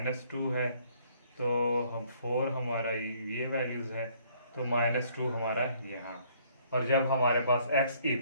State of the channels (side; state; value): both; inverted; correlation -0.64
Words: है, तो हम 4 हमारा ये वैल्यूज़ है, तो -2 हमारा यहाँ। और जब हमारे पास x